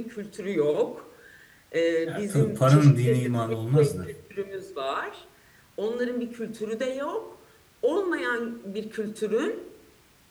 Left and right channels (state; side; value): identical; both; correlation 1.00